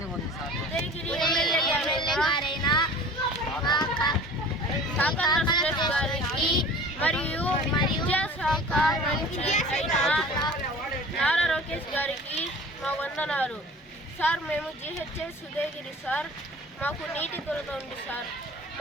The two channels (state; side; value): normal; both; correlation 0.43